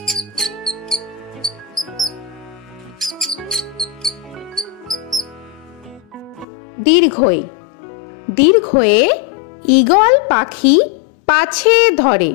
দীর্ঘই দীর্ঘয়ে ঈগল পাখি পাছে ধরে।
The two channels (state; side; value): drops out; right; at 6.5 s